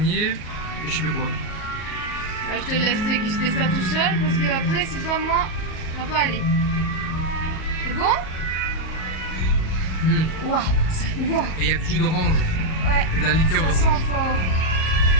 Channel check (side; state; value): right; late; 38 ms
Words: et je sais plus quoi. Je te laisse déguster ça tout seul parce que après c'est pas moi, ça va pas aller. C'est bon? Waouh, wow. Et il y a du jus d'orange. Ouais. Et de la liqueur d'orange. Ça sent fort.